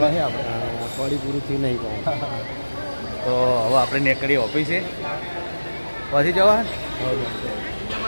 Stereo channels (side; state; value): both; inverted; correlation -1.00